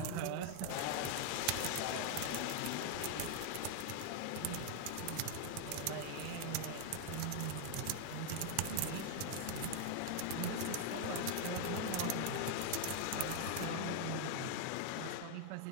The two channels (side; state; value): both; different; correlation 0.00